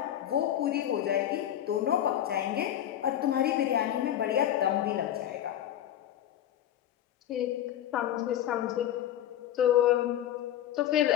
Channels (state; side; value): quieter; right; 11.4 dB